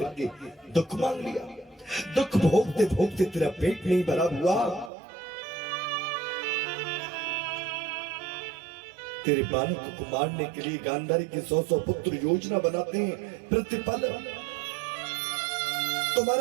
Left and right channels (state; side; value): drops out; left; at 4.9 s